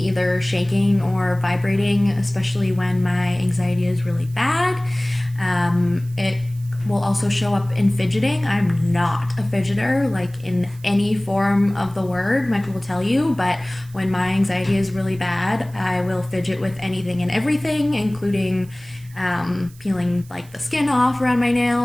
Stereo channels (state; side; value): noise; right; hiss, 25 dB below the sound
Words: shaking or vibrating, especially when my anxiety is really bad. It will also show up in fidgeting. I'm not a fidgeter, like in any form of the word, Michael will tell you, but when my anxiety is really bad, I will fidget with anything and everything, including peeling like the skin off around my